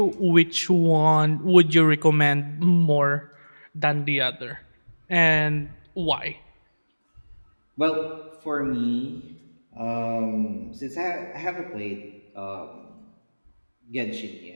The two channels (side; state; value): both; inverted; correlation -1.00